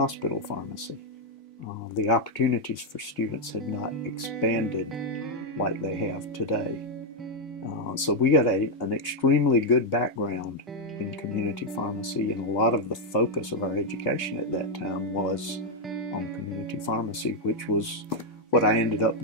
pharmacy. The opportunities for students had not expanded like they have today. So we got an extremely good background in community pharmacy, and a lot of the focus of our education at that time was on community pharmacy, which was what I ended up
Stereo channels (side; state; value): both; normal; correlation -0.01